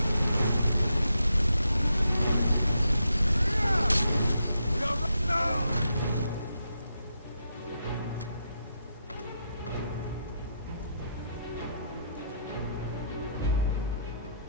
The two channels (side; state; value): both; inverted; correlation -0.80